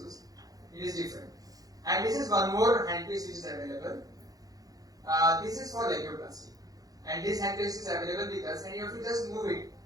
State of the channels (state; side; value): late; left; 0.18 ms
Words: It is different. And this is one more handpiece which is available. This is for labioplasty. And this handpiece is available with us, and you have to just move it